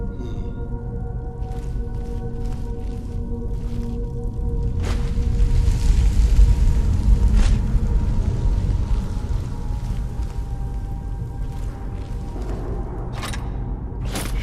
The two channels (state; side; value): identical; both; correlation 1.00